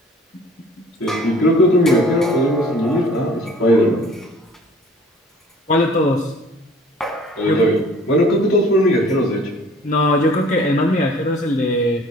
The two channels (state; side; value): normal; both; correlation 0.51